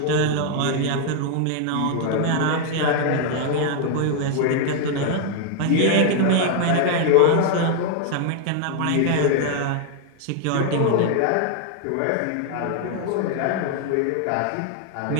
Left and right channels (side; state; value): both; different; correlation 0.00